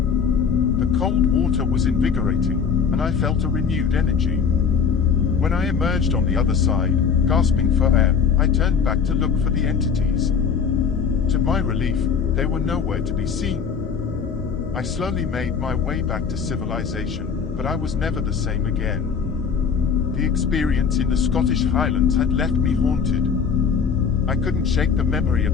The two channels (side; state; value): right; quieter; 6.4 dB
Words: cold water was invigorating, and I felt a renewed energy. When I emerged on the other side, gasping for air, I turned back to look for the entities. To my relief, they were nowhere to be seen. I slowly made my way back to civilization, but I was never the same again. The experience in the Scottish Highlands had left me haunted. I couldn't shake the memory